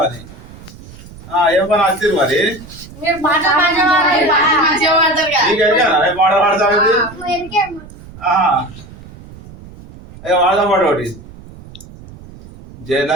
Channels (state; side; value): noise; right; rumble, 18 dB below the sound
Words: అని. ఏం పని వచ్చింది మరి? నీకు పాట పాడతావు? అయ్యో వాడదాం పాట ఒకటి.